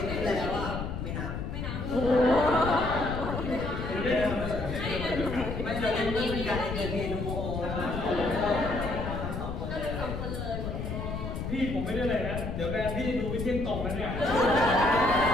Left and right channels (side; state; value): left; noise; rumble, 5 dB below the sound